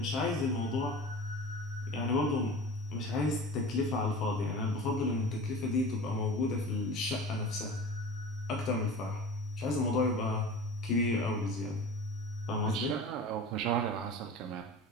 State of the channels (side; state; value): both; normal; correlation 0.36